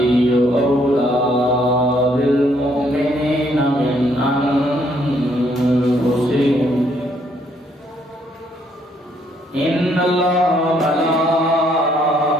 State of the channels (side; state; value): both; normal; correlation 0.69